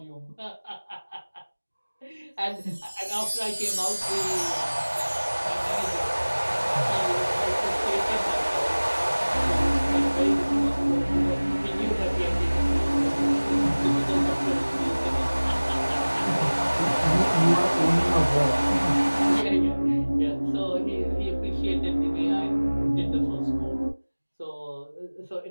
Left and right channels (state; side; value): inverted; both; correlation -1.00